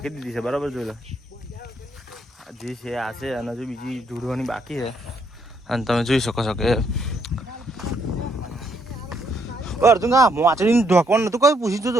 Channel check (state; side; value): normal; both; correlation 0.73